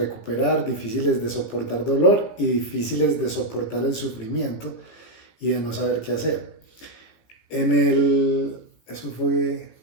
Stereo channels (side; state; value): right; late; 17 ms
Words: difíciles de soportar dolor y difíciles de soportar el sufrimiento y de no saber qué hacer. Eso fue